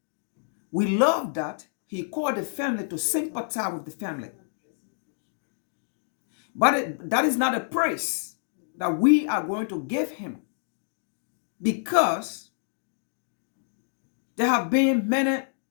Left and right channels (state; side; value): silent; right; digital silence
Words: We love that he called the family to sympathize with the family. But that is not a praise that we are going to give him, because there have been many